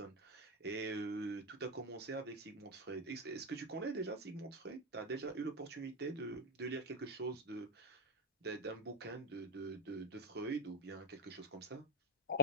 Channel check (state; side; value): normal; both; correlation 0.07